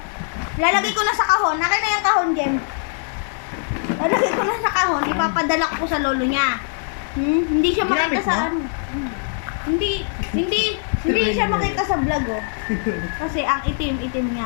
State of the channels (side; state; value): right; silent; 61 dB below the other